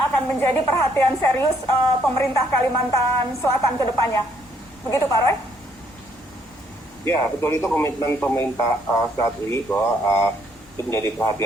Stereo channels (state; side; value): normal; both; correlation 0.69